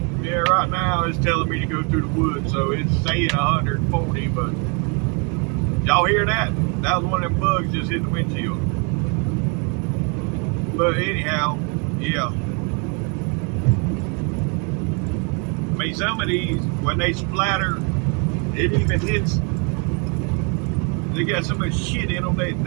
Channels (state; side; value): quieter; left; 34.7 dB